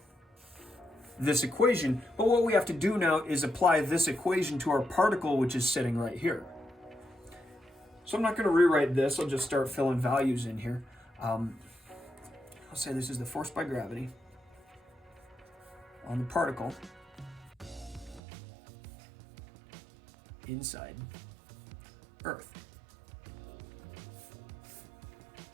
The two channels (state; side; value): drops out; left; at 18.2 s